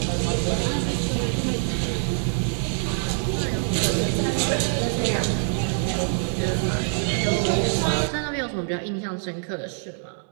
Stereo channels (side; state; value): left; silent; 62 dB below the other